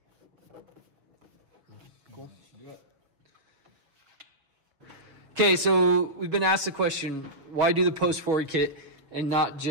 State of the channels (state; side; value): late; left; 6.2 ms